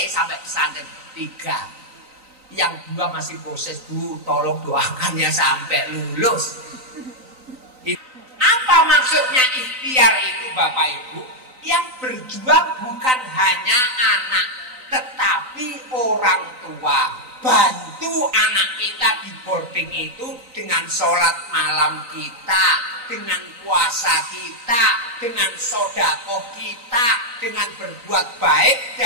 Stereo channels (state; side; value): late; left; 3.9 ms